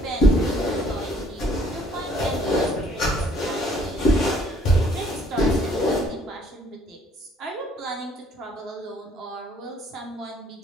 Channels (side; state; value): both; normal; correlation 0.62